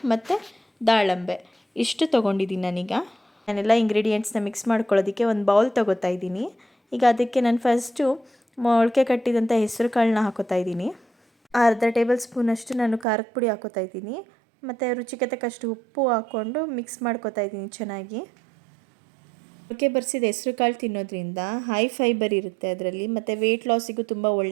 ಮತ್ತು ದಾಳಂಬೆ ಇಷ್ಟು ತೊಗೊಂಡಿದ್ದೀನಿ. ನಾನೆಲ್ಲ ಇಂಗ್ರೀಡಿಯೆಂಟ್ಸ್ನ ಮಿಕ್ಸ್ ಮಾಡ್ಕೊಳ್ಳೋದಕ್ಕೆ ಒಂದು ಬೌಲ್ ತೊಗೋತಾ ಇದ್ದೀನಿ. ಈಗ ಅದಕ್ಕೆ ನಾನು ಫಸ್ಟು ಮೊಳಕೆ ಕಟ್ಟಿದಂಥ ಹೆಸರು ಕಾಳನ್ನ ಹಾಕೋತಾ ಇದ್ದೀನಿ. ಅರ್ಧ ಟೇಬಲ್ ಸ್ಪೂನಷ್ಟು ನಾನು ಖಾರದ ಪುಡಿ ಹಾಕೋತಾ ಇದ್ದೀನಿ. ಮತ್ತು ರುಚಿಗೆ ತಕ್ಕಷ್ಟು ಉಪ್ಪು ಹಾಕ್ಕೊಂಡು ಮಿಕ್ಸ್ ಮಾಡ್ಕೋತಾ ಇದ್ದೀನಿ ಚೆನ್ನಾಗಿ. ಮೊಳಕೆ ಬರಿಸಿದ ಹೆಸರು ಕಾಳು ತಿನ್ನೋದ್ರಿಂದ ಹೈ ಫೈಬರ್ ಇರುತ್ತೆ ಅದರಲ್ಲಿ, ಮತ್ತು ವೆಯ್ಟ್ ಲಾಸಿಗೂ ತುಂಬ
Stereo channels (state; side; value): drops out; left; at 13.1 s